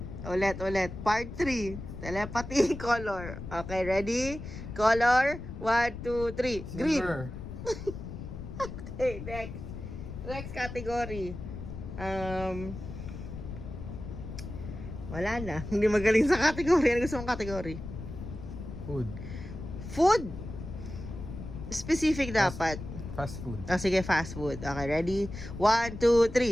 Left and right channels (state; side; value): noise; left; rumble, 9 dB below the sound